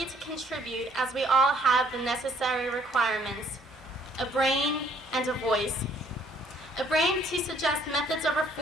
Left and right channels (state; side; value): normal; both; correlation 0.63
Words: to contribute as we all have the necessary requirements, a brain and a voice. A brain to suggest methods of